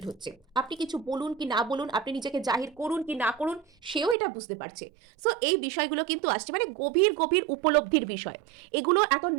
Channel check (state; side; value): drops out; left; at 4.2 s